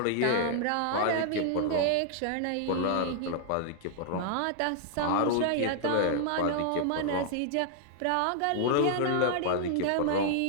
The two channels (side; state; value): both; different; correlation -0.01